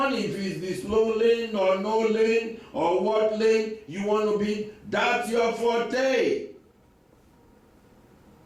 it, if it's the slow lane or no lane or what lane you want to be, that's your forte.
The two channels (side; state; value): both; identical; correlation 1.00